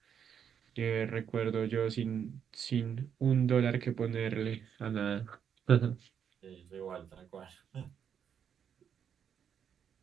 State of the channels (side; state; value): left; quieter; 8.0 dB